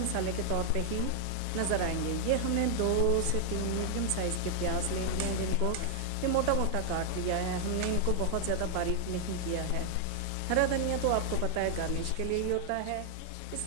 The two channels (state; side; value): different; both; correlation 0.00